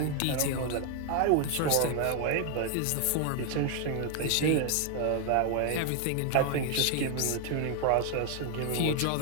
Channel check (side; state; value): both; different; correlation 0.00